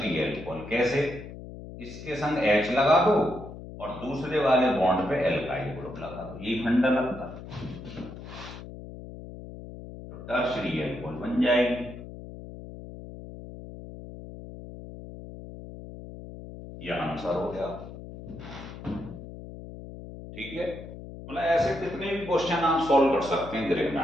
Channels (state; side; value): noise; left; hum, 13 dB below the sound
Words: अल्कोहल, कैसे, इसके संग H लगा दो और दूसरे वाले बॉन्ड पे एल्काइल ग्रुप लगा दो, यही फंडा लगता है, तो टर्शियरी अल्कोहल बन जाएगी। यह आंसर हो गया, ठीक है। मतलब ऐसे कितने भी क्वेश्चन आप सॉल्व कर सकते हैं